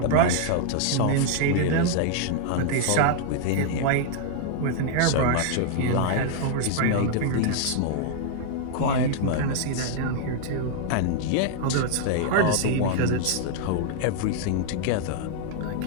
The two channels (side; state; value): both; different; correlation -0.01